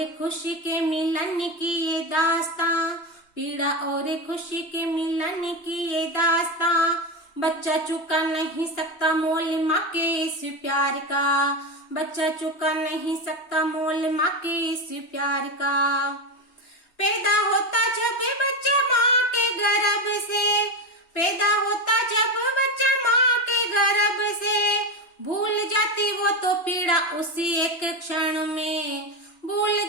खुशी के मिलन की ये दास्तां, पीड़ा और खुशी के मिलन की ये दास्तां, बच्चा चुका नहीं सकता मोल माँ के इस प्यार का, बच्चा चुका नहीं सकता मोल माँ के इस प्यार का। पैदा होता जब बच्चा माँ के गर्भ से, पैदा होता जब बच्चा माँ के गर्भ से, भूल जाती वो तो पीड़ा उसी एक क्षण में, भूल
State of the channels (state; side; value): late; right; 2.9 ms